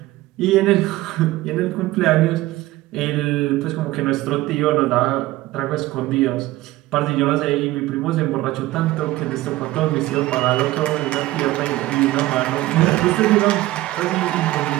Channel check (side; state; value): left; quieter; 17.2 dB